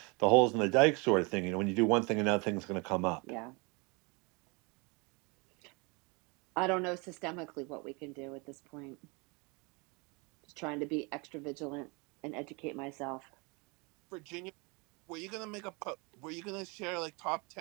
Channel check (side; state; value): left; quieter; 29.4 dB